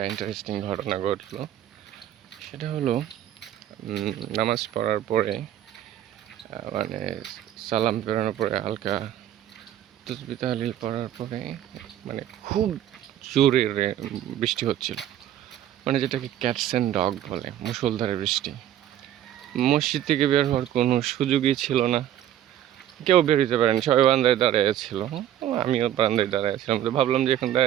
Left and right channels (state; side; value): quieter; left; 11.5 dB